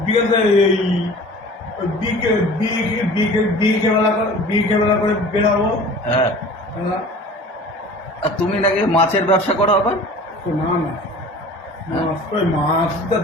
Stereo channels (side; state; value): both; normal; correlation 0.43